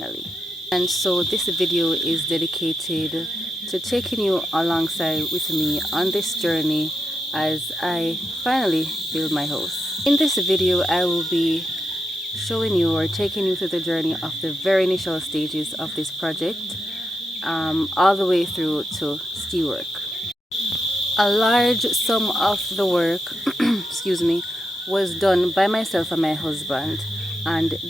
And so this video is dedicated to taking you alongside with me on this journey as I finally build my house. In this video, I will be showing you or taking you through the journey of the very initial stages of this project, all the way through to steel work. A large sum of the work, excuse me, was done by myself and my husband, and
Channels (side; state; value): both; normal; correlation 0.85